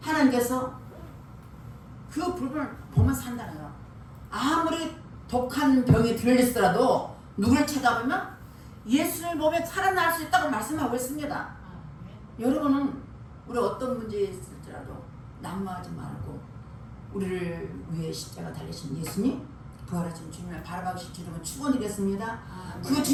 하나님께서 그 불뱀을 보면 산다는 거예요. 아무리 독한 병이 들리더라도 누구를 쳐다보면 예수를 보면 살아날 수 있다고 말씀하고 있습니다. 여러분은 우리 어떤 문제에 있을지라도 낙마하지 말고 우리를 위해 십자가 달리신 예수님 부활하신 주님을 바라보실 주님은 축원드리겠습니다. 그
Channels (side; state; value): both; identical; correlation 1.00